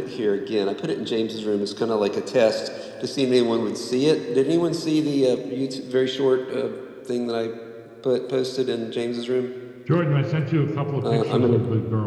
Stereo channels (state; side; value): identical; both; correlation 1.00